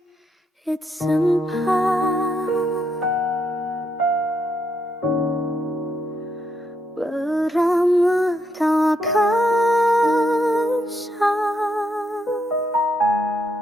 it's sempat beramah tak kasar.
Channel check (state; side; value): normal; both; correlation 0.78